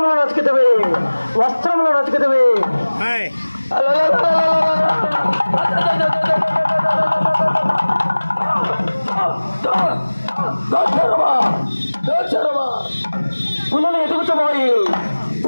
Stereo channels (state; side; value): inverted; both; correlation -1.00